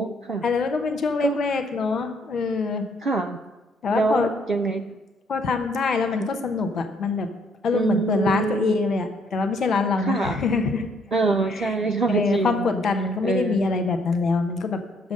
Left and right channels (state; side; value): normal; both; correlation 0.67